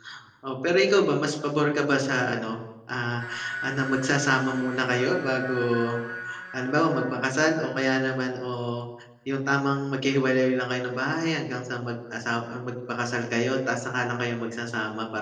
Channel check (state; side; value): identical; both; correlation 1.00